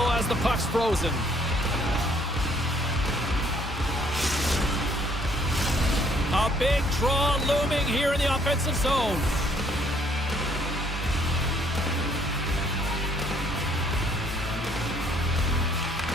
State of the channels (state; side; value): normal; both; correlation 0.65